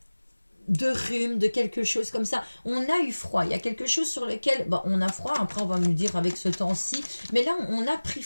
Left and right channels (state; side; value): inverted; both; correlation -1.00